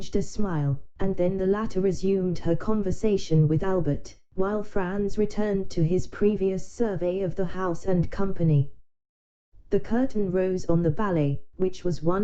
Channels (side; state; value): both; identical; correlation 1.00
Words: a smile, and then the latter resumed her conversation with Albert, while Franz returned to his previous survey of the house and company. The curtain rose on the ballet, which was one